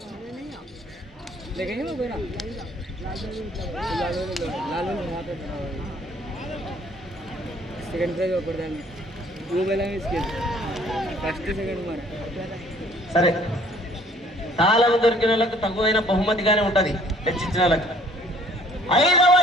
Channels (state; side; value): normal; both; correlation 0.58